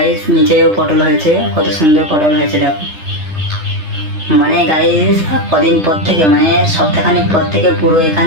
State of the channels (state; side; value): late; left; 3.3 ms